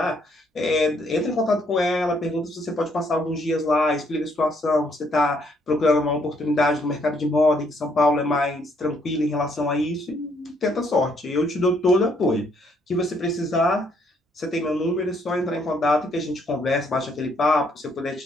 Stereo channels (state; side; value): normal; both; correlation 0.69